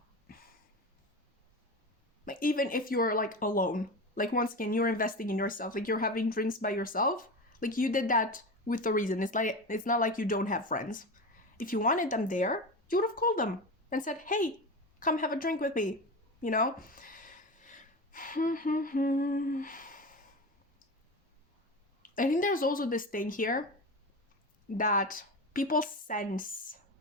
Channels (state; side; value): normal; both; correlation 0.25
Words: Like, even if you're like alone, like, once again, you're investing in yourself. Like, you're having drinks by yourself. Like, you did that with a reason. It's not like you don't have friends. If you wanted them there, you would have called them and said, hey, come have a drink with me, I think there's also this thing here that people sense